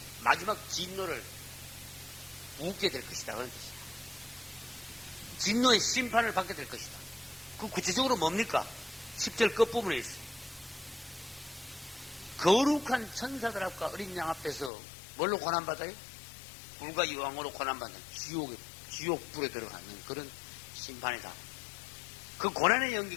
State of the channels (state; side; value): drops out; right; at 14.7 s